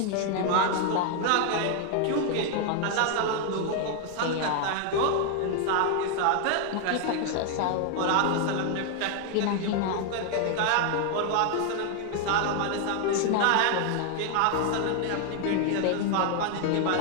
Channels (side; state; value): both; different; correlation 0.00